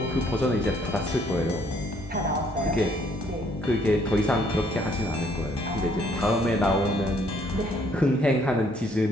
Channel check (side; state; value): both; normal; correlation 0.65